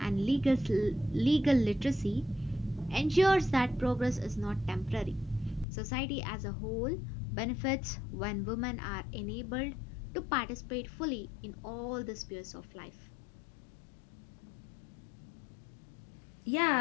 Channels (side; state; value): right; drops out; at 5.7 s